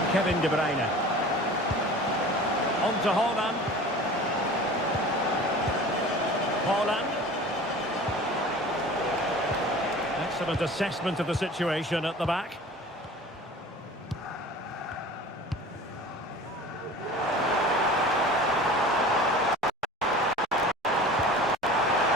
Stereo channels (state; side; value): normal; both; correlation 0.41